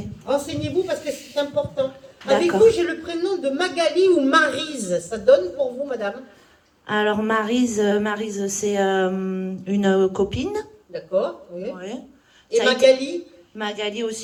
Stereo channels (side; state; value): both; identical; correlation 1.00